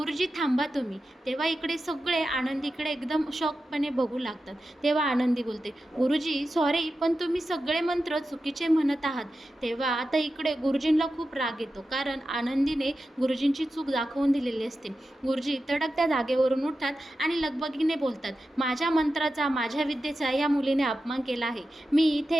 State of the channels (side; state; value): both; normal; correlation 0.91